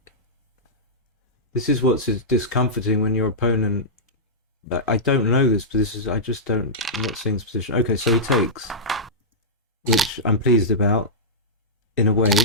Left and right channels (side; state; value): both; normal; correlation -0.12